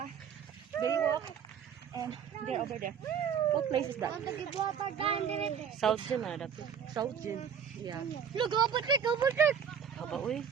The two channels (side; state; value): left; quieter; 7.7 dB